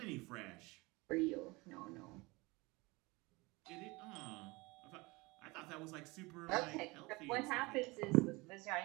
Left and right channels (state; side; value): quieter; left; 24.2 dB